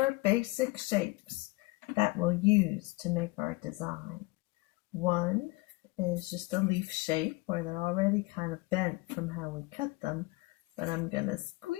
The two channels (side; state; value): right; quieter; 23.4 dB